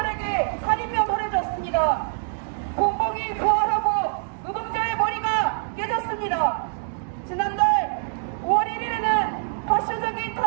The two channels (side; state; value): left; silent; digital silence